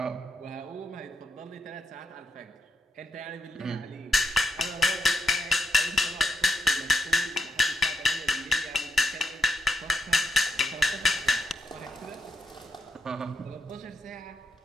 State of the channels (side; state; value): both; normal; correlation 0.81